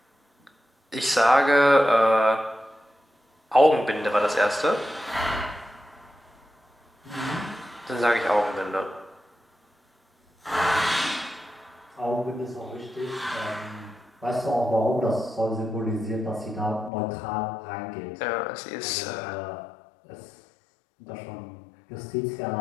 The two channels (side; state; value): right; drops out; at 16.9 s